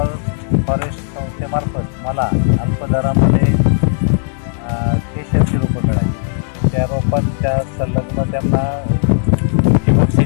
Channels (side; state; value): right; silent; digital silence